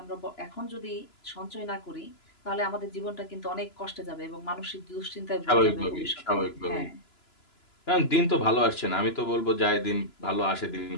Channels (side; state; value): right; late; 3.0 ms